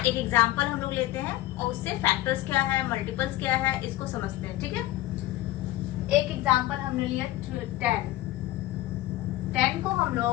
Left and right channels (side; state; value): right; quieter; 15.8 dB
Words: एग्जांपल हम लोग लेते हैं और उससे फैक्टर्स क्या है, मल्टीपल्स क्या है, इसको समझते हैं। ठीक है, एक एग्जांपल हमने लिया 10 को हम